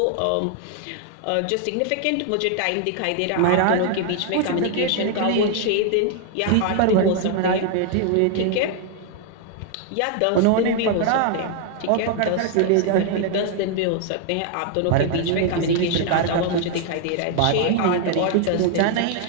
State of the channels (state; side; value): different; both; correlation 0.00